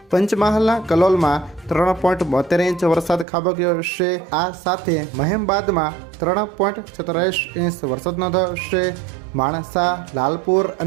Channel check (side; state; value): left; drops out; at 3.2 s